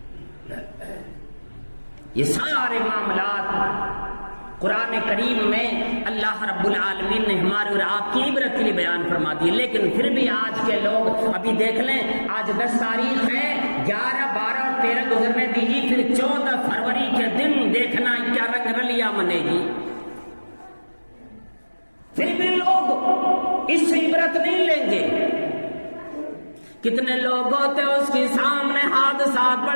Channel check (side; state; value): both; inverted; correlation -1.00